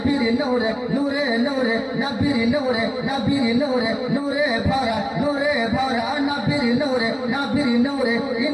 নূরে নূরে নূরে নবীর নূরে, নবীর নূরে নূরে ভরা, নূরে ভরা নবীর নূরে, নবীর নূরে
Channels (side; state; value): both; identical; correlation 1.00